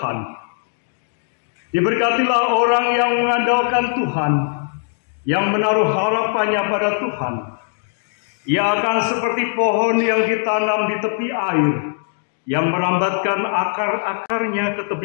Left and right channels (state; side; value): silent; right; digital silence